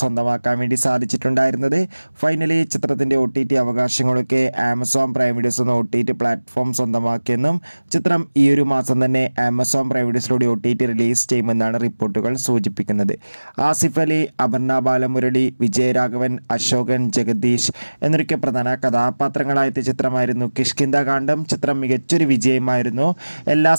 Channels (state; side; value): inverted; both; correlation -1.00